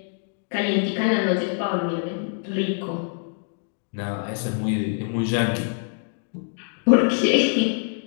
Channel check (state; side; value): silent; right; digital silence